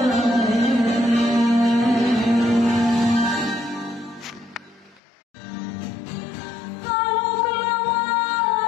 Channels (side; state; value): right; drops out; at 5.0 s